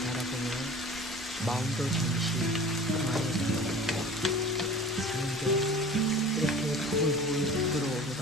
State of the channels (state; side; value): normal; both; correlation 0.41